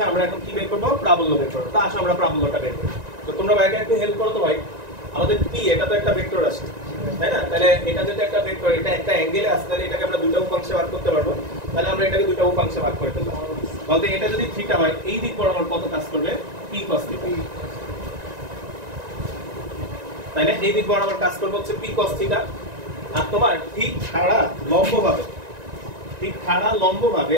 আমরা এখন কি বের করবো? প্রাবল্য বের করবো। তা আসো আমরা প্রাবল্যটা বের করি। তো তোমরা ভাইকে একটু হেল্প করো তো ভাই। আমাদের পি, এটা তো একটা ভেক্টর আছে, তাই না? তাহলে এটা যেটা একটা ভেক্টর, এটা একটা অ্যাঙ্গেলে আছে, তাহলে এটাকে আমরা দুটো উপাংশে ভাগ করতে পারবো। তাহলে আমরা এটাকে দুটো উপাংশে ভাগ করে ফেললাম। বলতে এটা যদি থিটা হয়, এই দিক বরাবর কত কাজ করবে? P cos theta. তাই না? এই দিক বরাবর কাজ করবে হচ্ছে পি কস থিটা। আর তোমার ঠিক খাড়া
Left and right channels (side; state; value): left; late; 1.9 ms